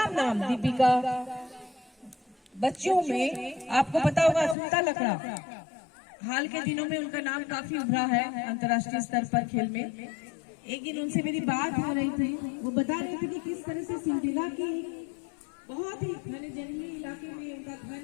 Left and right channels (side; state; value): right; drops out; at 4.5 s